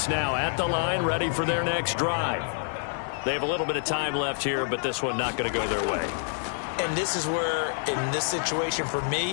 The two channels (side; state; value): right; silent; digital silence